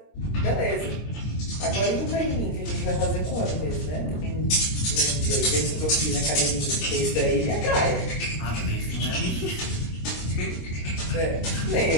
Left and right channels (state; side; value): late; right; 26 ms